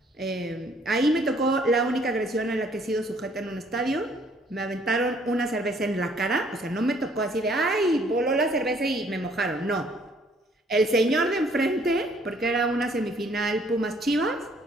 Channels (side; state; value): both; normal; correlation 0.62